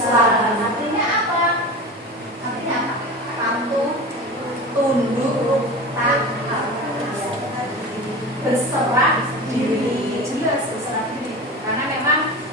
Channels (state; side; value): normal; both; correlation 0.31